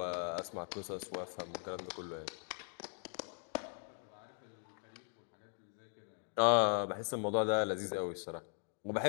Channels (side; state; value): right; silent; 51 dB below the other